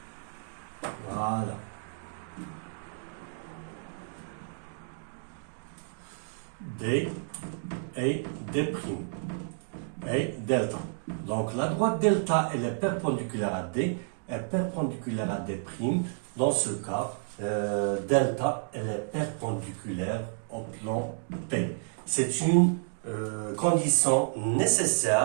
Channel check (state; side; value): silent; left; digital silence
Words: Voilà. D et D'. Et delta. Donc la droite delta, elle est perpendiculaire à D, est perpendiculaire à D'. Dans ce cas, delta, elle est perpendiculaire au plan P. C'est une condition